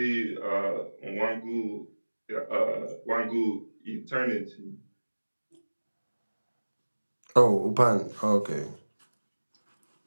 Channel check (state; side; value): inverted; both; correlation -1.00